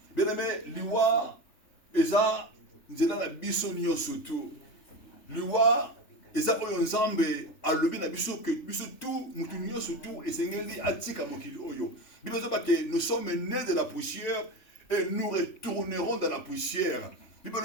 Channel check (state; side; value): late; right; 3.5 ms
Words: Bien aimé, l'Iwa, Eza, Nzela na biso nyo surtout. L'Iwa, Eza oyo nzambe, alobi na biso que biso tout, mutu nyo surtout, et sengeli atika mokili oyo. Biso que nous sommes nés de la poussière et nous retournerons dans la poussière. Bible